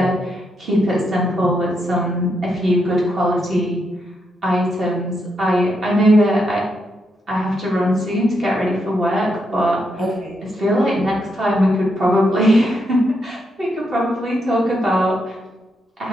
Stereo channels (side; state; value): both; normal; correlation 0.81